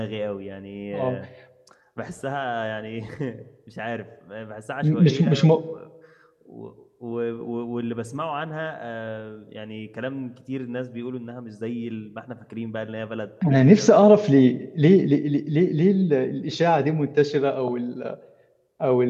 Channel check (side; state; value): both; identical; correlation 1.00